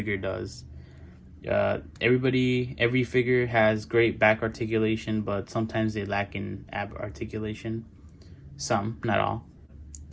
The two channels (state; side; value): identical; both; correlation 1.00